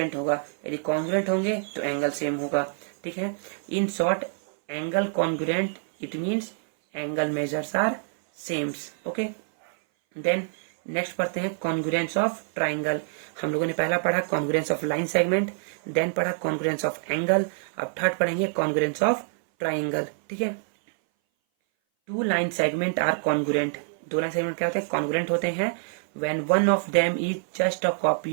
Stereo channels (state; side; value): silent; left; 58 dB below the other